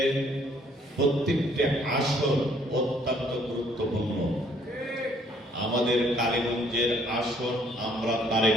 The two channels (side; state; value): both; normal; correlation 0.64